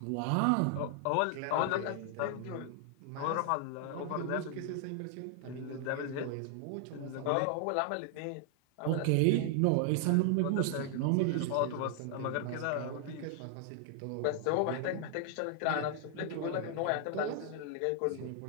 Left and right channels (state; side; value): different; both; correlation 0.00